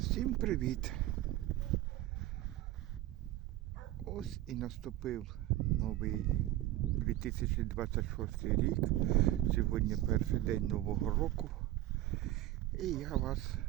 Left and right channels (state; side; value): quieter; left; 14.7 dB